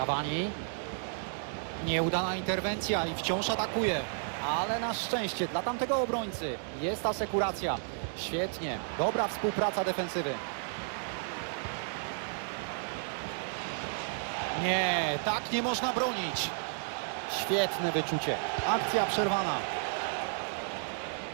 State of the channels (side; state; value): left; silent; 56 dB below the other